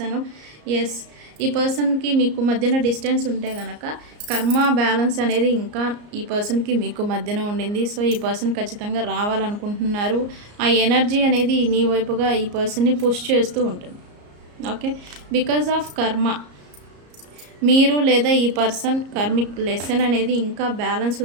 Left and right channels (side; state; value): left; late; 34 ms